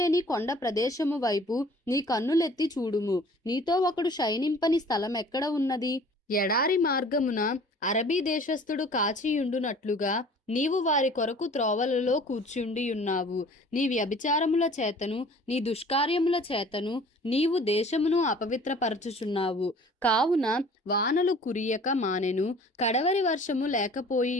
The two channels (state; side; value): normal; both; correlation 0.49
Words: కొండ ప్రదేశము వైపు నీ కన్నులెత్తి చూడుము. నీతో ఒకడు శయనింపని స్థలం ఎక్కడ ఉన్నది? ఎడారి మార్గమున అరబీ దేశస్థుడు కాచియుండునట్లుగా నీవు వారి కొరకు త్రోవలలో కూర్చుండియున్నావు. నీ వ్యభిచారముల చేతను నీ దుష్కార్యముల చేతను నీవు దేశమును అపవిత్రపరచుచున్నావు. కావున వానలు కురియక మానెను, కడవరి వర్షము